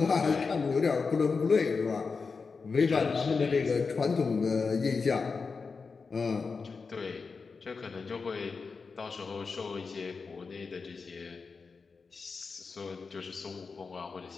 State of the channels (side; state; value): right; quieter; 4.8 dB